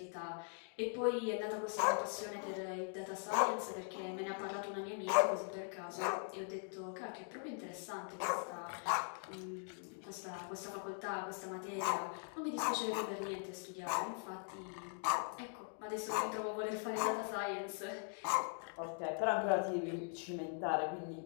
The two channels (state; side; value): silent; right; 50 dB below the other